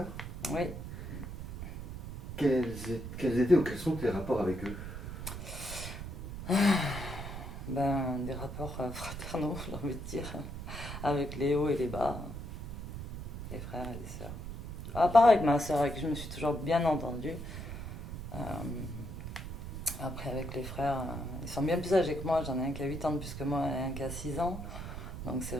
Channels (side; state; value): right; noise; rumble, 8 dB below the sound